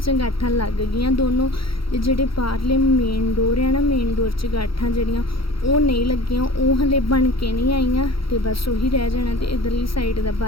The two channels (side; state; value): right; late; 0.75 ms